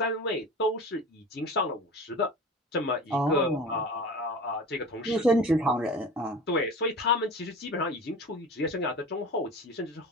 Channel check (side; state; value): both; normal; correlation 0.35